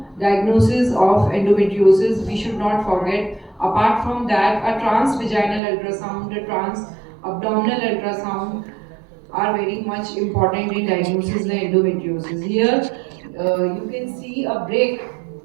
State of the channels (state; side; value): drops out; left; at 5.6 s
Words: diagnosis of endometriosis. We should not forget. Apart from that, a transvaginal ultrasound, a trans-abdominal ultrasound are very much important in diagnosis of endometriosis. Here, you can see a break